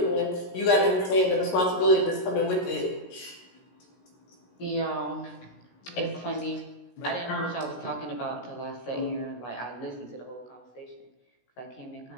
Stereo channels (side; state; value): right; late; 16 ms